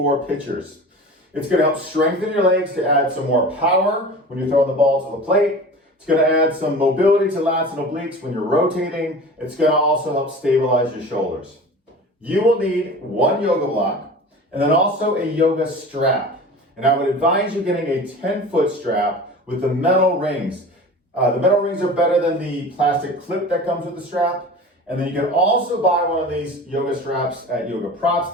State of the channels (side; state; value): both; normal; correlation 0.37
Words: pitchers. It's going to help strengthen your legs to add some more power when you're throwing the ball to the plate. It's going to add some mobility to lats and obliques when you're rotating. It's going to also help stabilize your shoulders. You will need one yoga block and then also a yoga strap. And I would advise you getting a 10-foot strap with the metal rings. The metal rings are better than the plastic clip that comes with the strap. And then you can also buy one of these yoga straps at